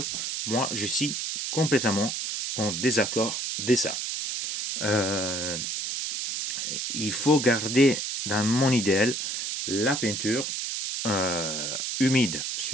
Moi je suis complètement en désaccord de ça. Il faut garder dans mon idéal la peinture humide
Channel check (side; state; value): right; noise; hiss, 3 dB below the sound